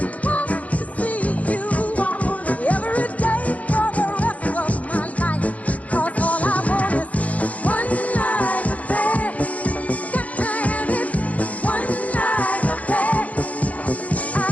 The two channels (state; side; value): late; right; 0.069 ms